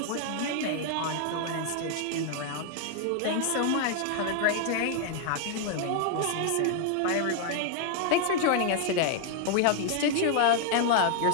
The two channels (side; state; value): both; different; correlation 0.00